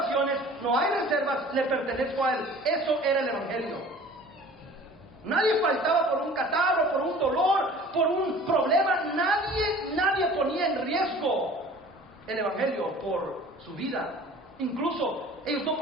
no hay reservas, le pertenezco a él. Eso era el evangelio. Nadie faltaba por un catarro, por un dolor, por un problema. Nadie ponía en riesgo el evangelio por su vida. Incluso ellos no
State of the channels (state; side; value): normal; both; correlation 0.46